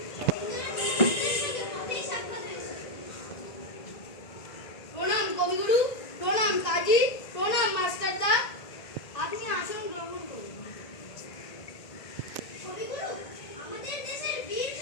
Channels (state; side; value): late; right; 1.9 ms